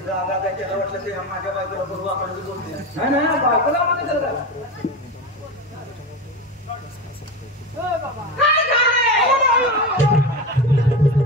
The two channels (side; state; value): both; normal; correlation 0.22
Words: रागा काय त्याला वाटलं ते माझ्या बायकोला बरोबर आपण बोलते नाही बायकोला मध्ये करत